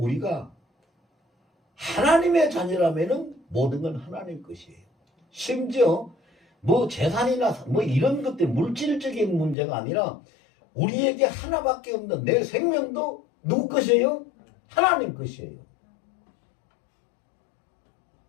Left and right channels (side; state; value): right; drops out; at 9.6 s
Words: 하나님의 자녀라면은 모든 건 하나님 것이에요. 심지어 뭐 재산이나 뭐 이런 것들 물질적인 문제가 아니라 우리에게 하나밖에 없는 내 생명도 누구 것이에요? 하나님 것이에요.